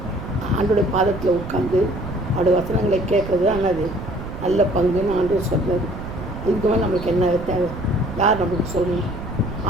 ஆண்டோடைய பாதத்தில் உட்காந்து அவருடைய வசனங்களை கேட்குறது ஆனது நல்ல பங்குன்னு ஆண்டவர் சொல்கிறது. இதுக்கு மேலே நம்மளுக்கு என்ன தேவை, யார் நம்மளுக்கு சொல்லணும்?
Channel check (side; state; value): right; noise; rumble, 9 dB below the sound